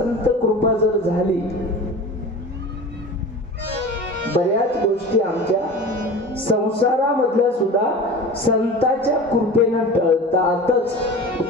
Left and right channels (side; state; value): both; normal; correlation 0.35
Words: कृपा जर झाली, बऱ्याच गोष्टी आमच्या संसारामधल्या सुद्धा संतांच्या कृपेनं टळतातच.